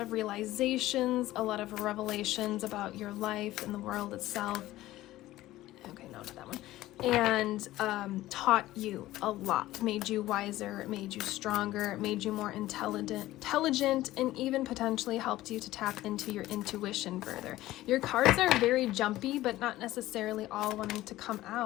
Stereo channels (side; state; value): right; quieter; 16.0 dB